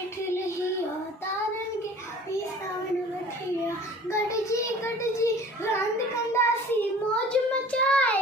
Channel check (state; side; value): normal; both; correlation 0.46